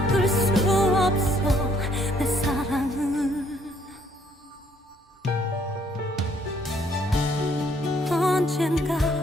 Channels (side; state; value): both; normal; correlation 0.66